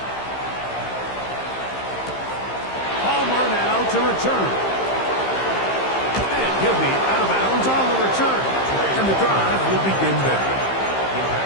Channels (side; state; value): right; late; 15 ms